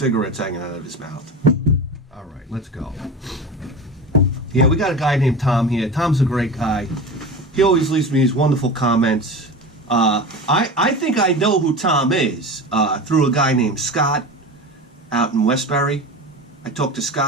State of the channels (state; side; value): normal; both; correlation 0.29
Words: hanging out of his mouth. All right, let's go. Yeah, we got a guy named Tom here. Tom's a great guy. He always leaves me these wonderful comments. I think I know who Tom is through a guy named Scott out in Westbury. I talked to